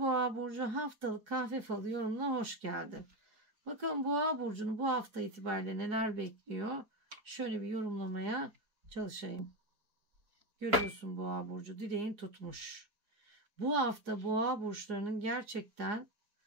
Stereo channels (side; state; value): left; late; 4.8 ms